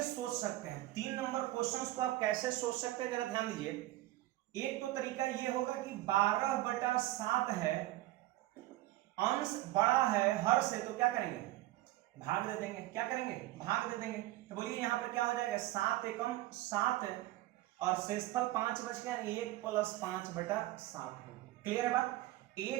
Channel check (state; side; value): quieter; left; 16.6 dB